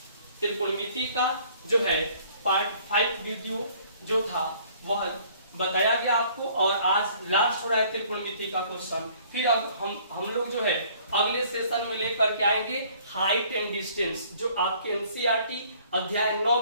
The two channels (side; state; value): both; inverted; correlation -0.57